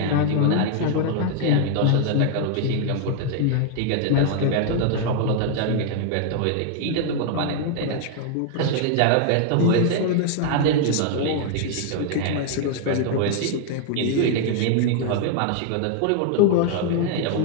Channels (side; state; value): both; different; correlation 0.00